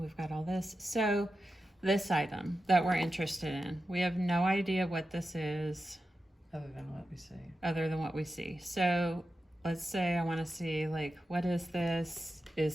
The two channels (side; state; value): both; normal; correlation 0.91